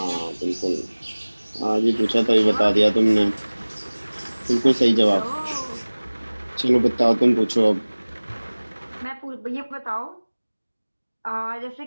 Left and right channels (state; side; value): inverted; both; correlation -1.00